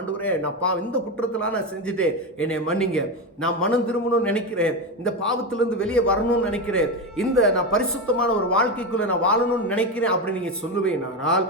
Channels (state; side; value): normal; both; correlation 0.15